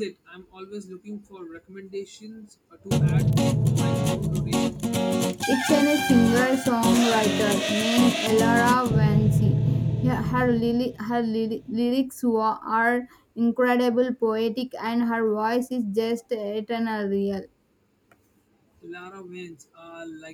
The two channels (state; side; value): identical; both; correlation 1.00